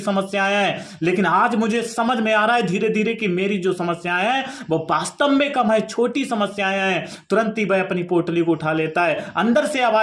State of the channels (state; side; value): identical; both; correlation 1.00